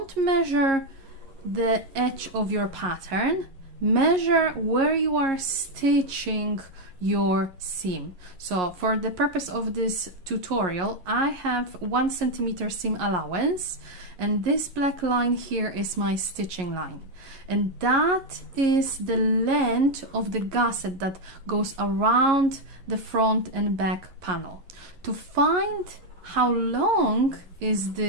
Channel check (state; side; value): late; left; 11 ms